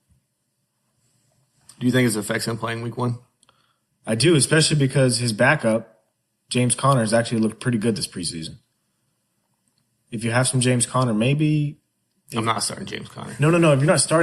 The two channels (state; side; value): identical; both; correlation 1.00